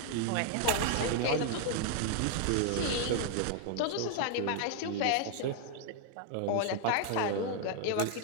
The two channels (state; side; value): different; both; correlation 0.00